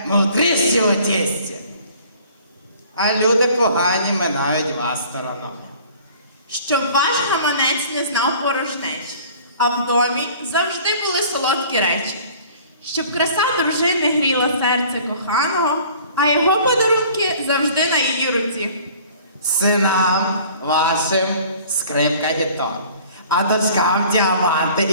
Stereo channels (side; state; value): both; inverted; correlation -0.50